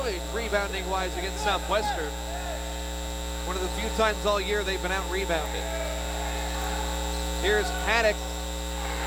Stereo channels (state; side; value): identical; both; correlation 1.00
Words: rebounding-wise against Southwestern. One of the few times all year they've been out-rebounded. Here's Haddock.